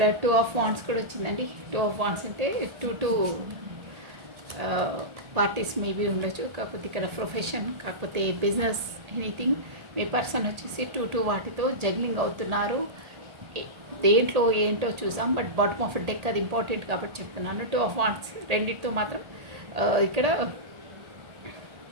2 of Wands కూడా వచ్చిందండి. 2 of Wands అంటే 2 పార్టీస్ మేబీ ఉండొచ్చు, కాకపోతే ఇక్కడ ప్రొఫెషన్, కాకపోతే బిజినెస్, ఎనీథింగ్. మీ పర్సన్ వచ్చేసి 2 వాటితో జగ్లింగ్ అవుతున్నారు. దేంట్లో ఏంటో చూసాం, బట్ బాటమ్ ఆఫ్ డెక్ అది ఇంపార్టెంట్ కాబట్టి చెప్తున్నాను. 2 of Wands రెండింటితో మాత్రం ఇక్కడ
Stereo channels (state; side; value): late; left; 1.8 ms